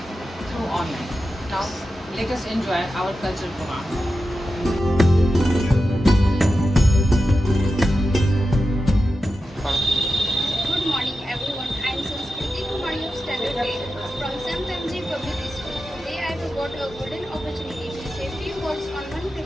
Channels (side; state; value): both; normal; correlation 0.91